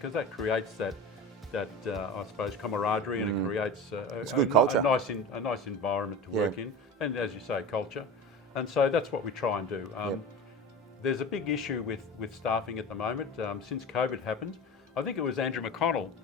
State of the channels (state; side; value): normal; both; correlation 0.32